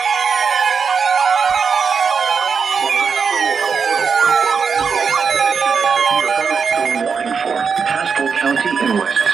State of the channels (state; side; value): quieter; left; 5.8 dB